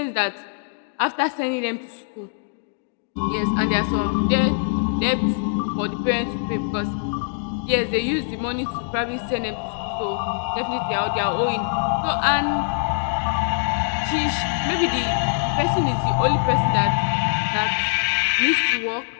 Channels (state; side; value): silent; right; digital silence